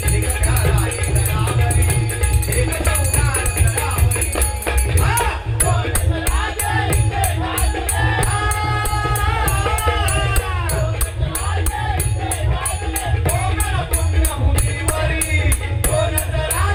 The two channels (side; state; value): both; identical; correlation 1.00